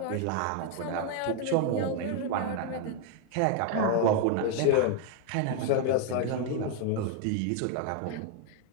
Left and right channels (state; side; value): different; both; correlation 0.00